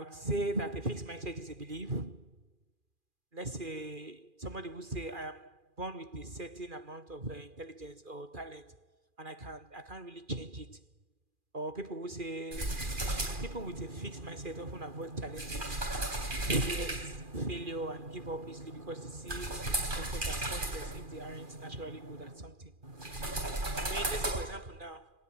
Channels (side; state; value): left; late; 2.4 ms